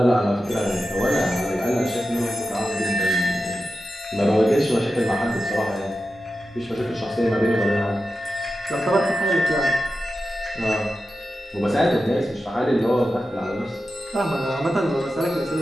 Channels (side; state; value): both; normal; correlation 0.92